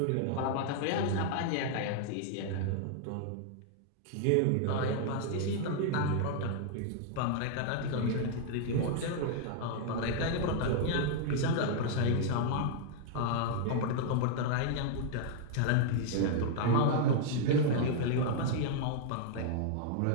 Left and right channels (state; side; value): different; both; correlation -0.01